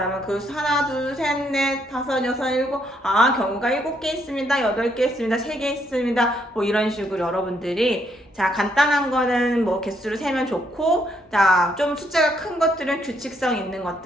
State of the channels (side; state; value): both; normal; correlation 0.73